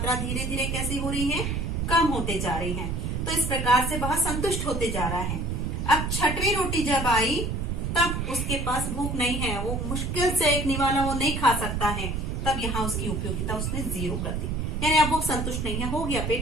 धीरे धीरे कैसी हो रही है? कम होते जा रही है। तो इस प्रकार से वह संतुष्ट होते जा रहा है। अब 6वीं रोटी जब आई, तब उसके पास भूख नहीं है, वो मुश्किल से एक निवाला वो नहीं खा सकता है, तब यहाँ उसकी उपयोगिता उसने 0 कर दी, यानी अब वो संतुष्ट नहीं है, हो गया,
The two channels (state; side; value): noise; right; rumble, 2 dB below the sound